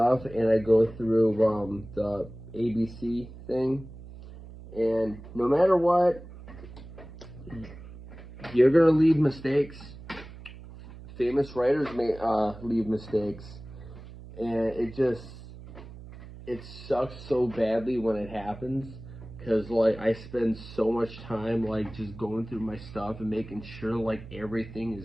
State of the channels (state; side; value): noise; right; hum, 15 dB below the sound